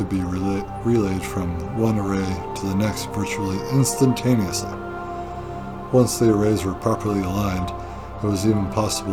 be relayed from one array to the next virtually instantaneously. Once the arrays were properly aligned, it was even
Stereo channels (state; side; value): identical; both; correlation 1.00